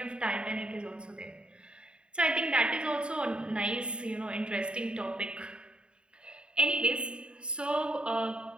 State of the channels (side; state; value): left; late; 0.052 ms